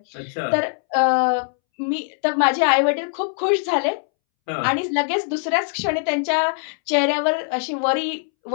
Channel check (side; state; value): right; silent; 65 dB below the other